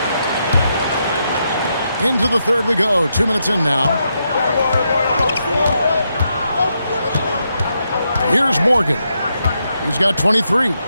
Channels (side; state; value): both; inverted; correlation -0.82